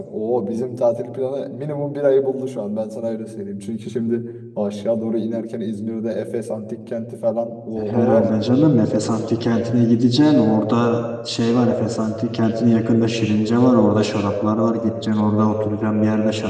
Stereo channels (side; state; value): both; identical; correlation 1.00